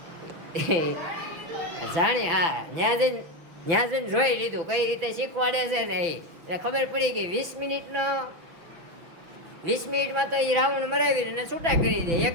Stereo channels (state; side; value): late; left; 6.3 ms